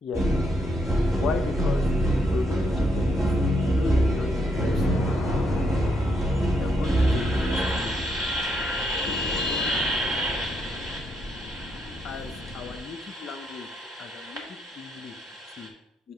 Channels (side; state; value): both; normal; correlation 0.77